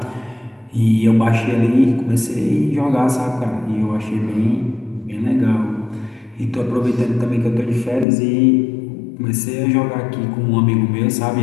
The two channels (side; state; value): right; drops out; at 8.1 s